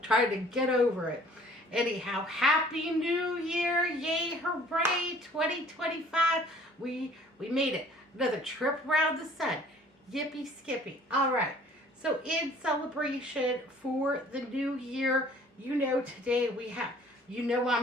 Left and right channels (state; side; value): normal; both; correlation 0.53